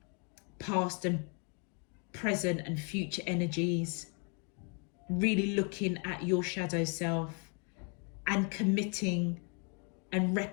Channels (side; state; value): right; quieter; 38.1 dB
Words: past and present and future energies, really looking at your shadow self and committing and